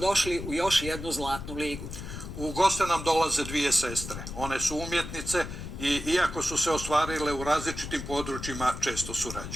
u još jednu Zlatnu ligu. U goste nam dolaze dvije sestre. One su umjetnice i iako su se ostvarile u različitim područjima, često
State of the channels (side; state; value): left; noise; rumble, 9 dB below the sound